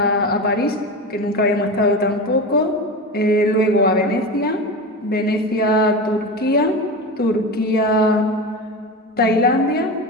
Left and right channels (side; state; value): both; normal; correlation 0.24